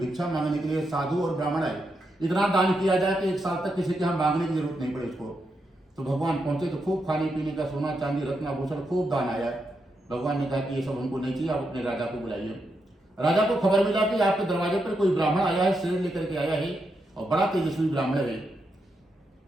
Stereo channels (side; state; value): both; normal; correlation 0.83